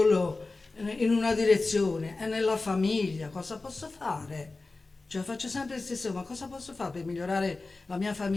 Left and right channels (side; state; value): right; quieter; 3.5 dB